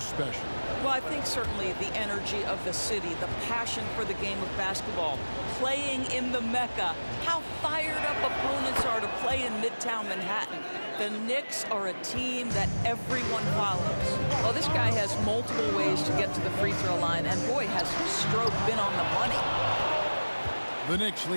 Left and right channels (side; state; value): both; inverted; correlation -1.00